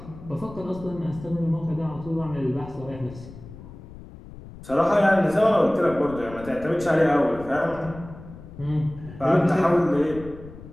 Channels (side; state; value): left; noise; rumble, 16 dB below the sound